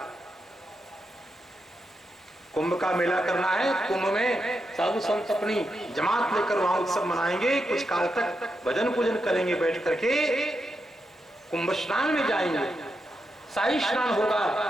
कुंभ का मेला करना है, कुंभ में साधु संत अपनी जमात लेकर वहां उत्सव मनाएंगे, कुछ काल तक भजन पूजन करेंगे, बैठ करके कुंभ स्नान में जाएंगे, शाही स्नान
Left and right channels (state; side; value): normal; both; correlation 0.85